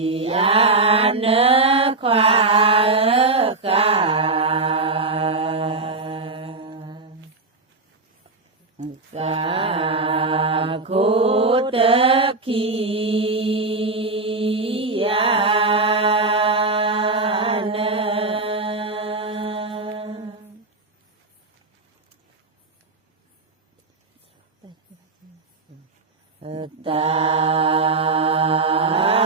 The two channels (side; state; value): left; quieter; 3.5 dB